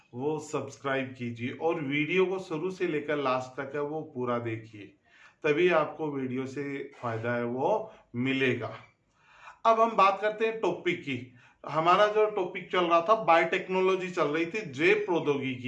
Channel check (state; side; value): identical; both; correlation 1.00